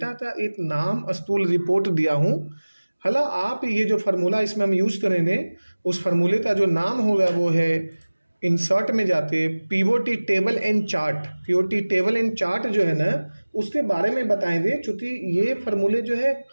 का एक नाम स्कूल रिपोर्ट दिया हूँ, हाला आप ये जो फार्मूला इसमें हम यूज़ करेंगे उस फार्मूले का जो नाम होगा वो है, इंसर्ट में जाते POT table and chart. POT table and chart जो है ना उसके बारे में बताएंगे, चूँकि ये फार्मूले जो है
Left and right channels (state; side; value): inverted; both; correlation -1.00